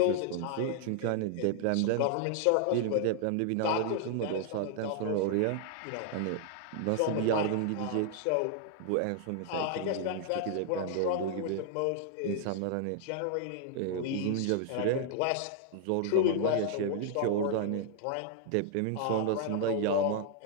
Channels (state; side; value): different; both; correlation 0.00